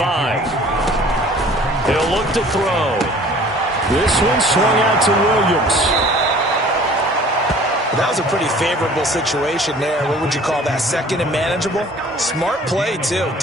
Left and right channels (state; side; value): normal; both; correlation 0.50